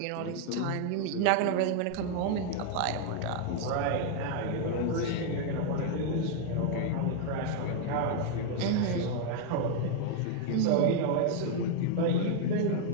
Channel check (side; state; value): both; different; correlation 0.00